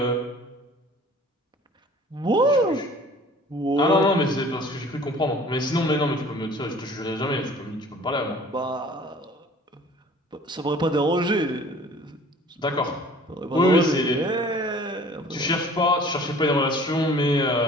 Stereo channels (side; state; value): both; normal; correlation 0.49